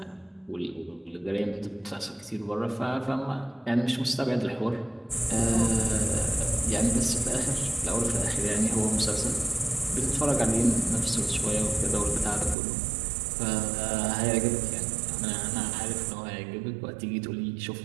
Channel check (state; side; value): drops out; left; at 12.6 s